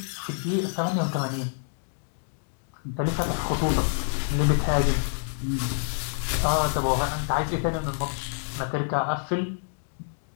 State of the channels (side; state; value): right; silent; digital silence